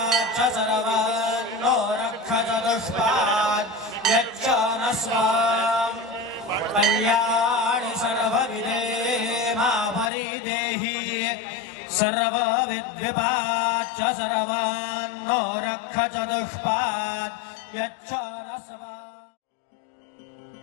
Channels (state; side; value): drops out; right; at 10.1 s